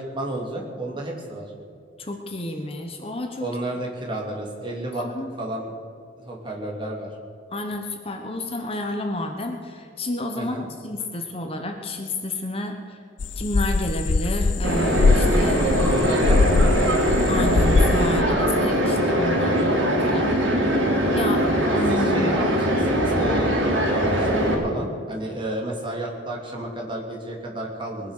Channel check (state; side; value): normal; both; correlation 0.50